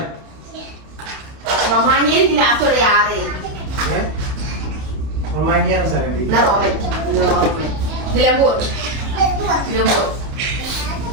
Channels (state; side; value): late; left; 31 ms